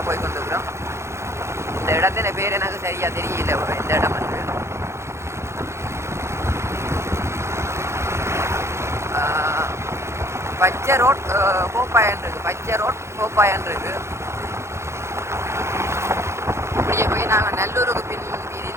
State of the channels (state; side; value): late; left; 0.13 ms